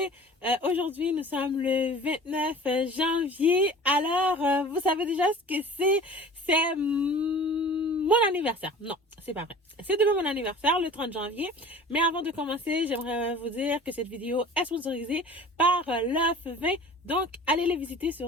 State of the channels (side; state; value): both; normal; correlation 0.42